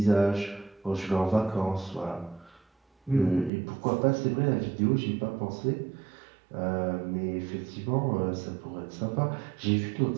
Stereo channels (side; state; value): left; drops out; at 3.5 s